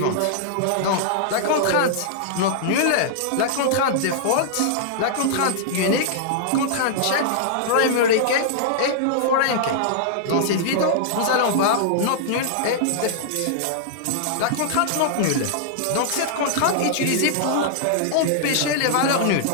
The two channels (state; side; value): different; both; correlation -0.01